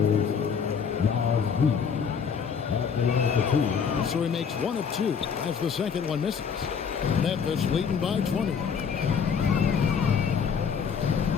So he makes 1 of 2 as the second one misses. Memphis leading by 20.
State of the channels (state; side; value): quieter; right; 6.6 dB